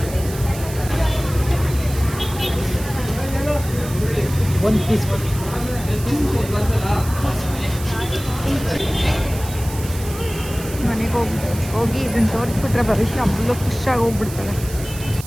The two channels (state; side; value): noise; right; hiss, 13 dB below the sound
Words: ಒಂದು ಪೀಸ್ ಮನೆಗೆ ಹೋಗಿ ಇದನ್ನು ತೋರಿಸ್ಬಿಟ್ರೆ ಭವಿಷ್ಯ ಫುಲ್ಲು ಖುಷಿಯಾಗಿ ಹೋಗ್ಬಿಡ್ತಾಳೆ